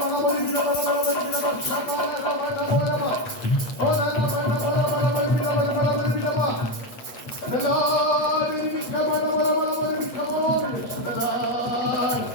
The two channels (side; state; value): right; late; 8.3 ms